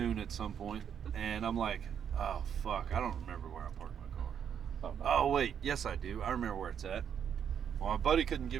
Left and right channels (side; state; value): left; quieter; 8.3 dB